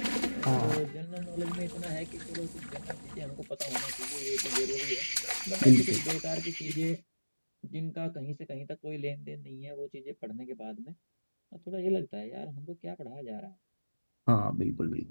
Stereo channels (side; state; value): both; inverted; correlation -1.00